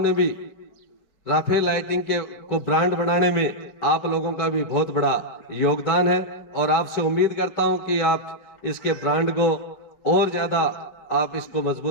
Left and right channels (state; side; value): late; right; 4.6 ms